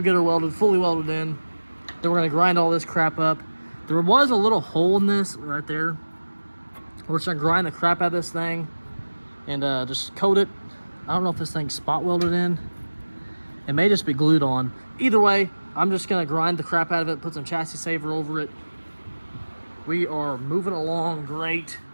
get her welded, fully welded in. Then we're gonna grind all this crap up. There was a little hole in this right there. We're just gonna grind the crap out of this thing and just coat it. I don't know if this thing's spot welded in. It may just be glued on. Either way, I'm just gonna grind the crap out of it, put some chassis saver over it. We are moving along great.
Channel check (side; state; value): both; inverted; correlation -1.00